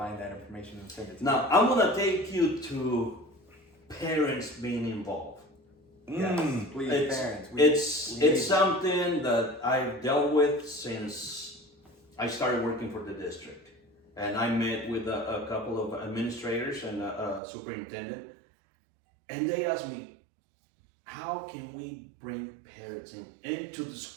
that information and send it to you. Now I'm gonna take you to parents being involved. Yes, please, parents. It's something that I've dealt with since I started working for the district, and I met with a couple of administrators and a superintendent, and they asked me, how can we bring parents into the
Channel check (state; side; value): drops out; left; at 17.4 s